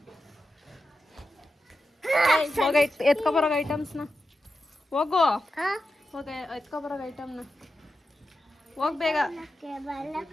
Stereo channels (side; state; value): both; normal; correlation 0.90